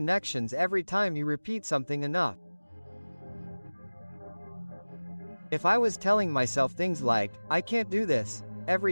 every time you repeat something enough. If I was telling myself things like, "I can't do this,"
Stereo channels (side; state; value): both; inverted; correlation -1.00